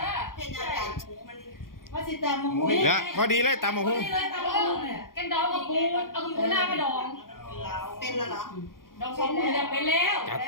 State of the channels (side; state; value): right; late; 0.91 ms